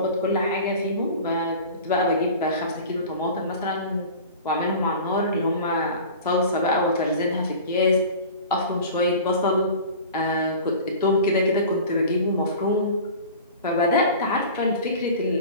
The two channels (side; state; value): both; inverted; correlation -0.38